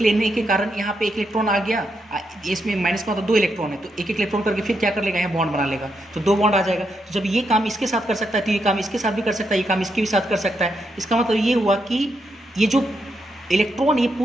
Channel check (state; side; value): normal; both; correlation 0.81